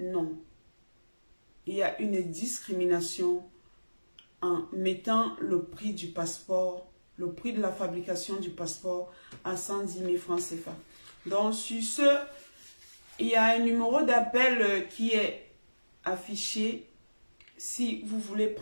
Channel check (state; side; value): inverted; both; correlation -1.00